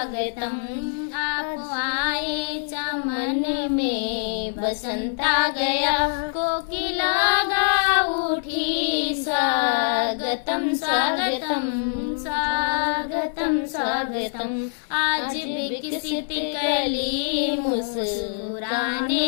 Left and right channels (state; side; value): silent; right; 63 dB below the other